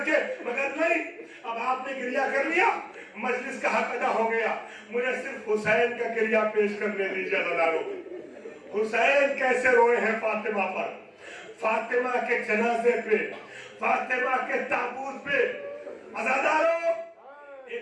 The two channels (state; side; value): identical; both; correlation 1.00